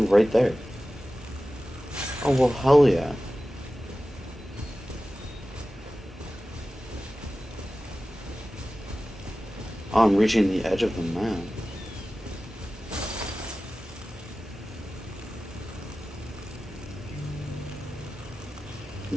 right there. Oh, well, hell yeah. Oh, I'm reaching the edge of the map.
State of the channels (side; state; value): both; normal; correlation 0.95